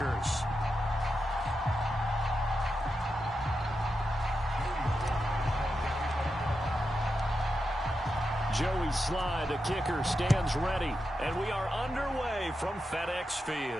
Joey Sly, the kicker, stands ready. And we are underway from FedEx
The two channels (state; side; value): normal; both; correlation 0.88